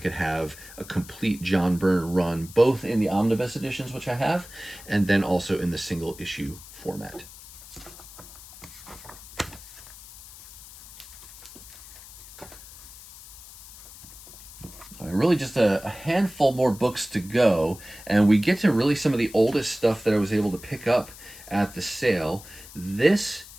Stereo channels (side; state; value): left; noise; hiss, 17 dB below the sound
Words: have a complete John Byrne run, both in the omnibus editions, which I have, and then also in the single issue format. Really just a handful more books to go, and we get to really some of the oldest stuff that I was able to pick up at the sale. This